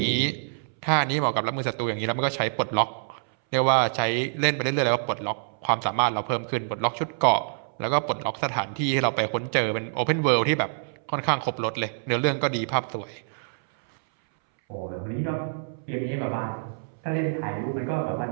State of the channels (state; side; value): silent; left; 61 dB below the other